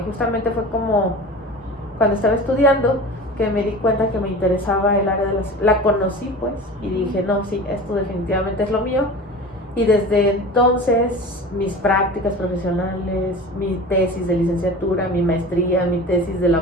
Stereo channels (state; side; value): normal; both; correlation 0.35